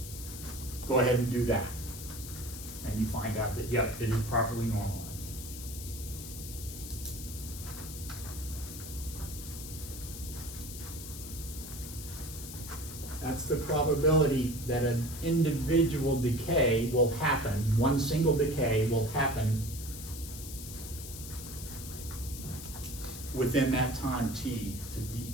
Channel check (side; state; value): left; noise; hiss, 11 dB below the sound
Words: go ahead and do that. And you find out that, yep, it is properly normalized. That's the probability that an individual decay will happen, one single decay will happen within that time t